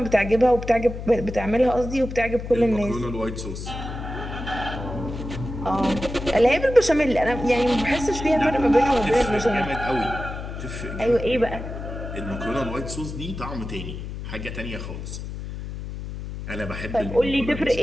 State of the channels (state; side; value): noise; left; hum, 8 dB below the sound